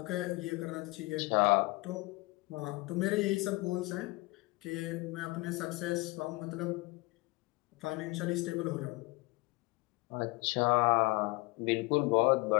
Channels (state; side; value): quieter; right; 23.8 dB